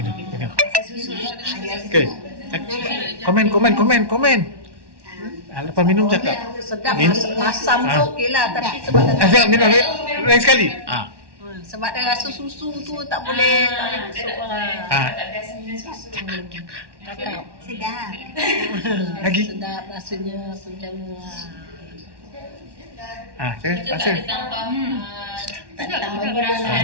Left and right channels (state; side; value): late; left; 1.1 ms